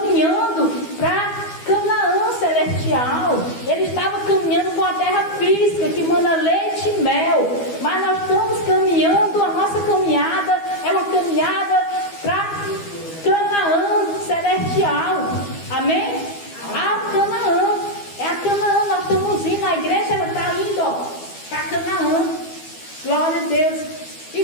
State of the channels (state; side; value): late; right; 12 ms